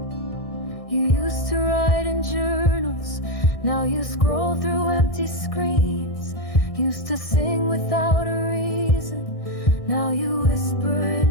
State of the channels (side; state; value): right; late; 1.6 ms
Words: You used to write in journals, now you scroll through empty screens. Used to sing without a reason, now you whisper